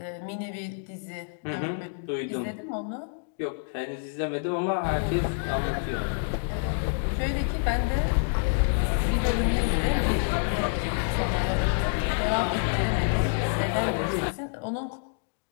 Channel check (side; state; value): right; silent; digital silence